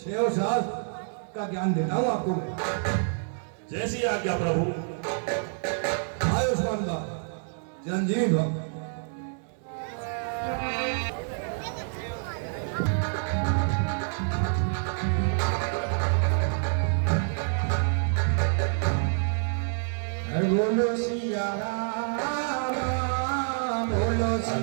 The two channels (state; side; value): silent; left; digital silence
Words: शास्त्र का ज्ञान देता हूं आपको मैं। जैसी आज्ञा प्रभु। आयुष्मान भव, चिरंजीव भव। बोलो सिया राम, बोलो